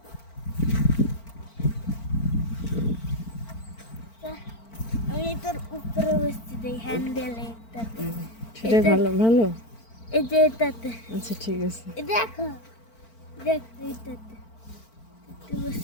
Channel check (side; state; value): right; late; 4.5 ms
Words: আমি তোর উপরে বসছি দেই হ্যান্ডেলে এটাতে। সেটাই ভালো ভালো। এই যে এটাতে। আচ্ছা ঠিক আছে, এই দেখো দেখ এইটাতে